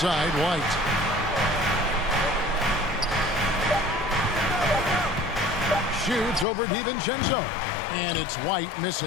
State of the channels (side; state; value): right; drops out; at 6.5 s